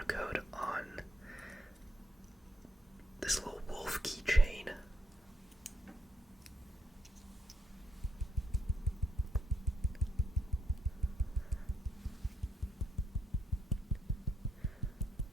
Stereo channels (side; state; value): both; normal; correlation 0.77